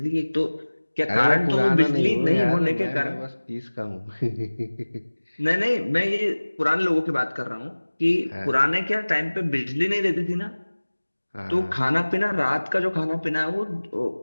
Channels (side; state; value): both; inverted; correlation -1.00